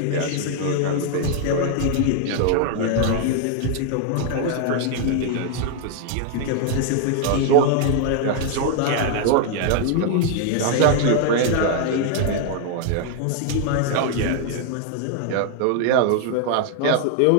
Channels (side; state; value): both; different; correlation 0.00